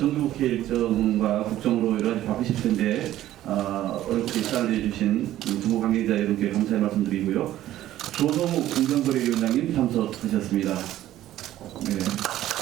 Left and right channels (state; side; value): quieter; left; 13.6 dB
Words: 일정과 국정으로 여러 가지 바쁘실 텐데 어렵게 시간을 내주신 정부 관계자 여러분께 감사의 말씀드리고요. 조성욱 공정거래위원장님 참석하셨습니다.